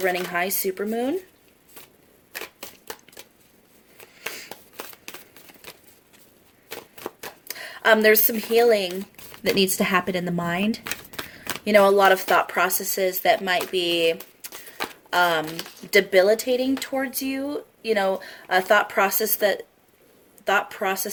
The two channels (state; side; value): identical; both; correlation 1.00